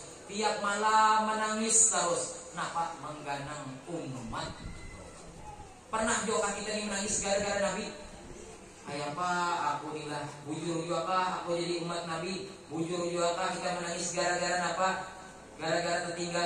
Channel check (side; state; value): both; identical; correlation 1.00